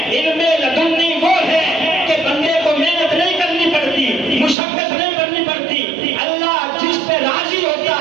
علم لدنی وہ ہے کہ بندے کو محنت نہیں کرنی پڑتی، مشقت نہیں کرنی پڑتی، اللہ جس پہ راضی ہوتا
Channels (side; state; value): left; drops out; at 4.5 s